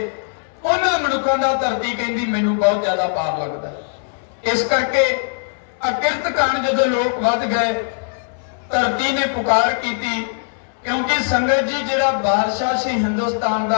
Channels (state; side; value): silent; right; digital silence